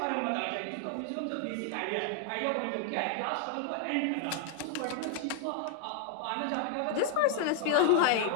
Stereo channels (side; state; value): both; different; correlation -0.01